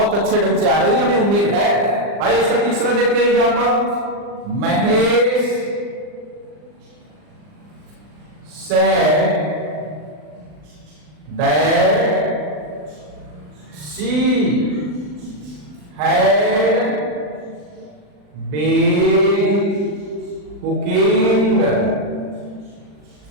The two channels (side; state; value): left; late; 40 ms